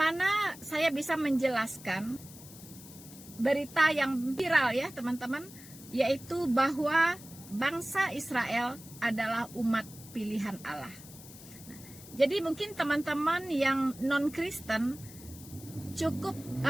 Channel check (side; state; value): left; noise; hiss, 17 dB below the sound